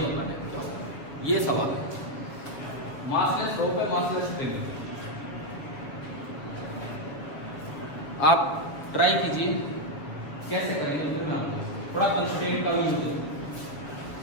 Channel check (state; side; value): late; right; 7.2 ms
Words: बताना है क्या होगा, ये सवाल है। मासलेस रॉक है, मासलेस स्प्रिंग है। आप ट्राई कीजिए कैसे करेंगे, फिर मैं आपको थोड़ा कंस्ट्रेंट का यूज